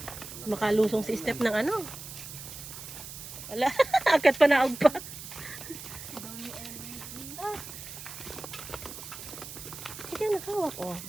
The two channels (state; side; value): noise; right; hiss, 11 dB below the sound